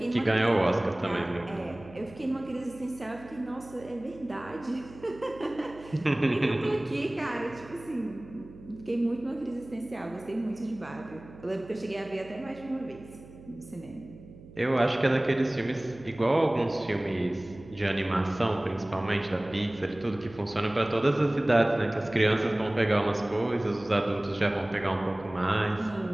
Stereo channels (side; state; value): right; noise; hum, 19 dB below the sound